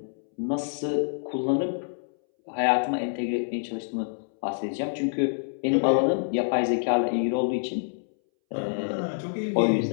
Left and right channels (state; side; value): silent; right; 60 dB below the other